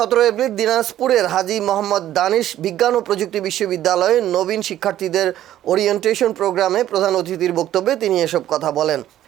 এপ্রিল দিনাজপুরের হাজী মোহাম্মদ দানিশ বিজ্ঞান ও প্রযুক্তি বিশ্ববিদ্যালয়ে নবীন শিক্ষার্থীদের ওরিয়েন্টেশন প্রোগ্রামে প্রধান অতিথির বক্তব্যে তিনি এসব কথা বলেন।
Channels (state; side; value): quieter; left; 12.6 dB